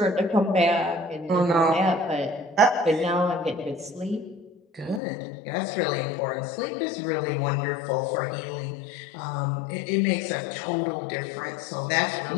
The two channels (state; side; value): drops out; right; at 5.0 s